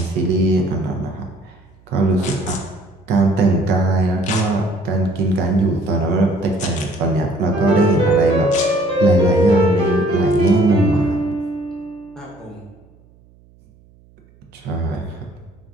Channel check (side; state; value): right; noise; hum, 29 dB below the sound